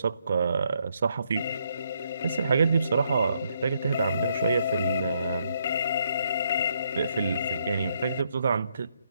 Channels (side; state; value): both; inverted; correlation -0.74